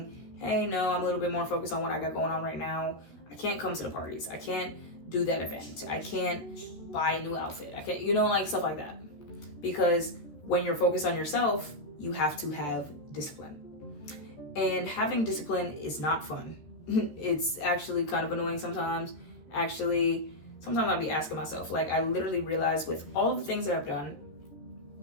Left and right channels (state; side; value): late; right; 13 ms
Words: hey, no, I'm a little bit more focused on what I got going on right now. I can't come to the parties. I can't do that event. I can't buy a new outfit. I can't, like stuff like that. Because when you're focused on yourself, you have to have discipline. And having discipline is not fun. It's actually kind of annoying sometimes. Actually, sometimes I'll be asking myself, like, I literally realized with all of the things that I've done